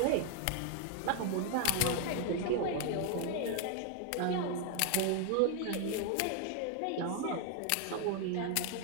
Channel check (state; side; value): different; both; correlation 0.00